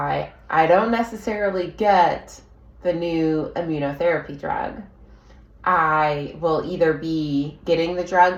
I don't necessarily get the new immunotherapy drug. I will either be getting the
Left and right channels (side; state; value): both; identical; correlation 1.00